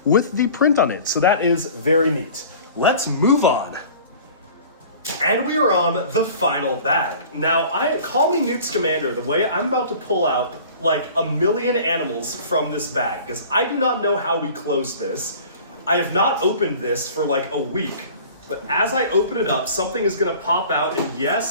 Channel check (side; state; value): both; inverted; correlation -0.45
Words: with the print on it. So that is very neat. Let's move on. And we are on the final bag. Now, call me Newt Scamander, the way I'm about to pull out like a million animals from this bag, because I do not know how we close this. I have not opened this for like a week, but as I open it up, something is gonna pop out, and